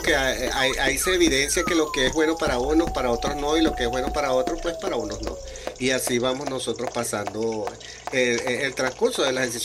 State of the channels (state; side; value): identical; both; correlation 1.00